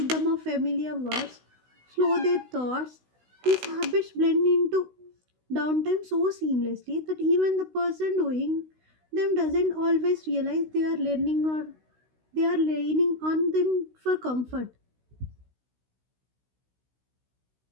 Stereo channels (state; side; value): late; left; 16 ms